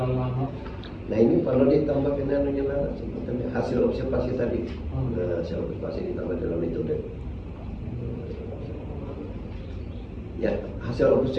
lama. Nah, ini perlu ditambah anunya lah, sebetulnya hasil observasi tadi. Nah, hasil observasi ditambah dalam metode. Ya, hasil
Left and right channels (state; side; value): identical; both; correlation 1.00